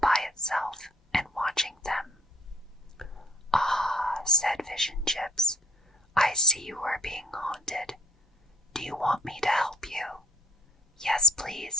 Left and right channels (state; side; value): normal; both; correlation 0.55